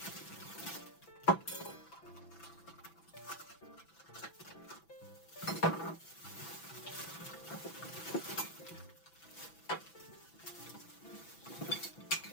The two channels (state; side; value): late; right; 6.0 ms